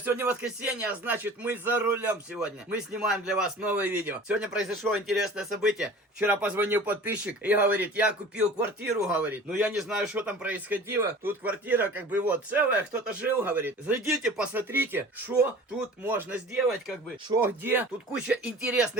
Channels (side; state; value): both; normal; correlation 0.42